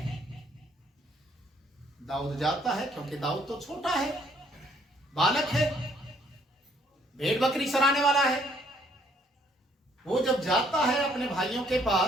दाऊद जाता है क्योंकि दाऊद तो छोटा है, बालक है, भेड़ बकरी चराने वाला है। वो जब जाता है अपने भाइयों के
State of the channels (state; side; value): normal; both; correlation 0.65